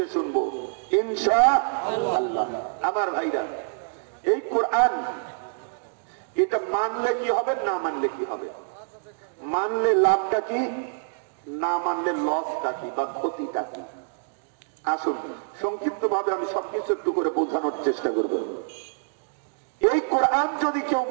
শুনবো ইনশাআল্লাহ। আমার ভাইরা, এই কোরআন এটা মানলে কি হবে, না মানলে কি হবে? মানলে লাভটা কি, না মানলে লসটা কি বা ক্ষতিটা কি? আসুন সংক্ষিপ্ত ভাবে আমি সবকিছু একটু করে বোঝানোর চেষ্টা করব। এই কোরআন যদি কেউ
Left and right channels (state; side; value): silent; left; digital silence